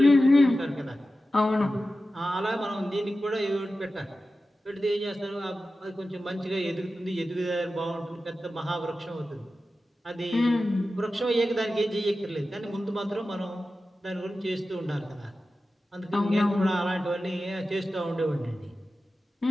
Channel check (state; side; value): normal; both; correlation 0.93